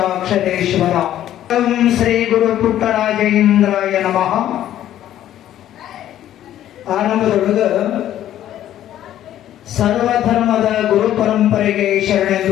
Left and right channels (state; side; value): quieter; right; 12.0 dB